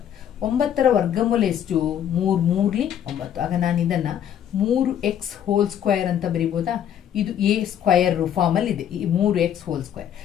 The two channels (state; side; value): quieter; right; 9.8 dB